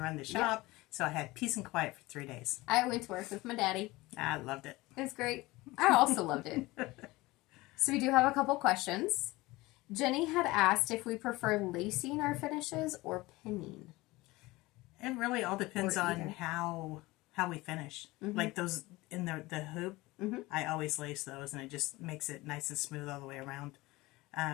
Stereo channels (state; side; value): quieter; right; 20.5 dB